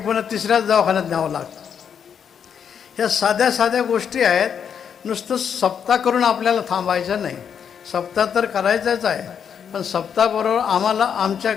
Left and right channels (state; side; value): quieter; right; 7.7 dB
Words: तिसऱ्याच दवाखान्यात न्यावं लागतं. ह्या साध्या साध्या गोष्टी आहेत. नुसतं सप्ताह करून आपल्याला थांबायचं नाही. सप्ताह तर करायचाच आहे, पण सप्ताहाबरोबर आम्हाला आमच्या